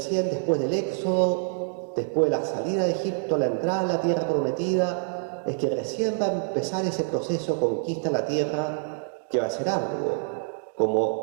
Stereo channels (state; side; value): silent; left; 61 dB below the other